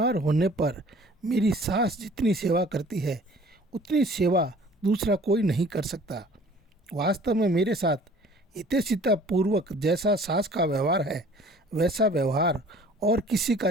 होने पर मेरी सास जितनी सेवा करती है उतनी सेवा दूसरा कोई नहीं कर सकता। वास्तव में मेरे साथ हितैषिता पूर्वक जैसा सास का व्यवहार है वैसा व्यवहार और किसी का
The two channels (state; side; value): normal; both; correlation 0.51